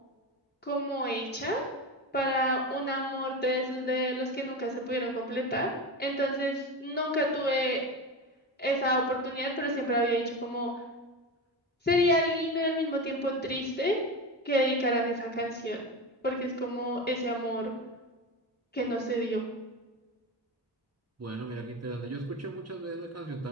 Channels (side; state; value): both; normal; correlation 0.23